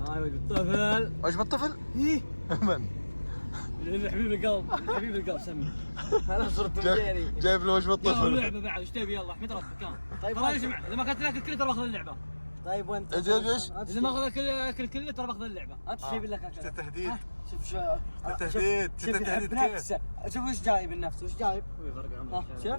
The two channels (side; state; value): both; inverted; correlation -1.00